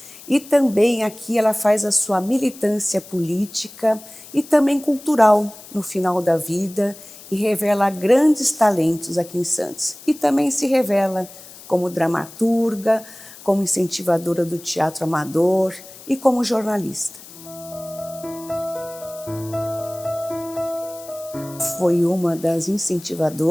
E também aqui ela faz a sua militância política e também cultural no final da vida, e revela grandes talentos aqui em Santos. E também se revela como dramaturga, como incentivadora do teatro amador e como jornalista. Foi uma das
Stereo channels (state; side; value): noise; left; hiss, 18 dB below the sound